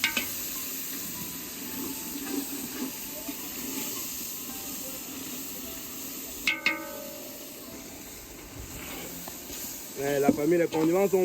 La famille, les condiments sont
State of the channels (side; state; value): both; identical; correlation 1.00